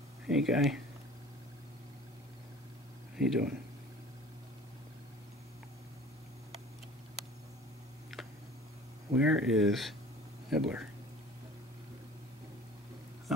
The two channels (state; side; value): normal; both; correlation 0.45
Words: Hey, guy. How you doing? Where is Nibbler?